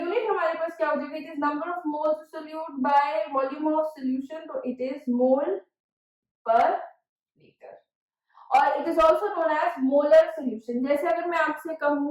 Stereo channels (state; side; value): identical; both; correlation 1.00